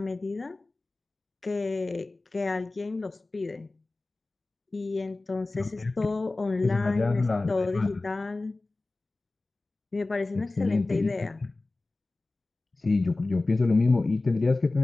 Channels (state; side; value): quieter; right; 3.2 dB